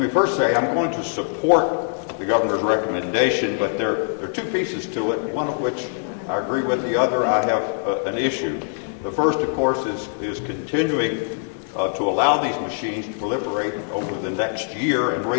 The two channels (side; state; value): right; silent; 64 dB below the other